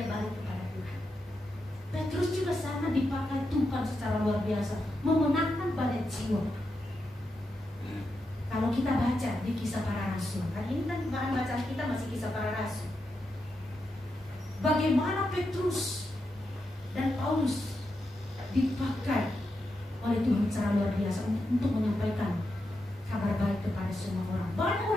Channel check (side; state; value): both; normal; correlation 0.86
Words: balik kepada Tuhan. Petrus juga sama dipakai Tuhan secara luar biasa, memenangkan banyak jiwa. Kalau kita baca di Kisah Para Rasul, kan ini kan bahan bacaan kita masih Kisah Para Rasul. Bagaimana Petrus dan Paulus dipakai oleh Tuhan secara luar biasa untuk menyampaikan kabar baik kepada semua orang. Banyak